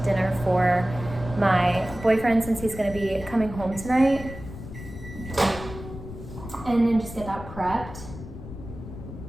dinner for my boyfriend since he's gonna be coming home tonight, and then just get that prepped.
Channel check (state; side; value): noise; left; rumble, 12 dB below the sound